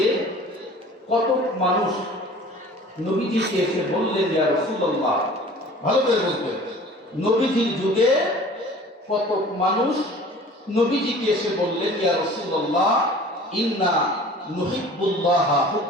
কত মানুষ নবীজিকে এসে বললেন, ইয়া রাসূলুল্লাহ, ভালো করে বলবেন, নবীজির যুগে কত মানুষ নবীজিকে এসে বললেন, ইয়া রাসূলুল্লাহ ইন্না নুহিব্বুল্লাহ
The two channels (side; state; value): both; normal; correlation 0.45